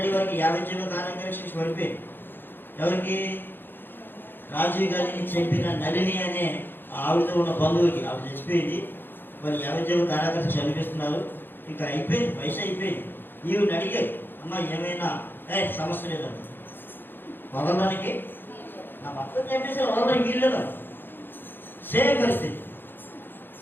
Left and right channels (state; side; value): late; right; 0.098 ms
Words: వారికి 50 జీవో కారణంగా శిక్ష పడిపోయింది. ఎవరికి? రాజీవ్ గాంధీని చంపిన నళిని అనే ఆవిడతో ఉన్న బంధువుకి. ఆవిడ చచ్చిపోయింది, వాళ్ళు 50 జీవో కారాగారం చనిపిస్తున్నారు. ఇంకా అయిపోయింది, వయసు అయిపోయింది. ఈవిడ అడిగారు, అమ్మ ఏమైనా సమస్య లేదండి, వదలడానికి నా భర్త చంపేసి వదలడానికి వీల్లేదా? సేమ్ పరిస్థితి.